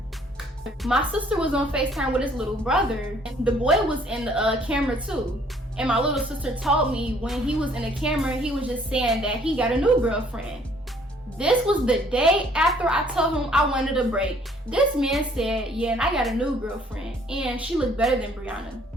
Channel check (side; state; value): both; normal; correlation 0.61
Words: My sister was on FaceTime with his little brother. The boy was in the camera too. And my little sister told me when he was in the camera, he was just saying that he got a new girlfriend. This was the day after I told him I wanted a break. This man said, yeah, and I got a new girlfriend, and she looked better than Brianna.